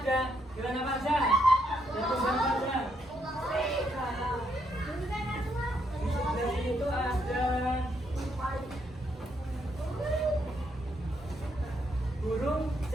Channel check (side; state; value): both; normal; correlation 0.76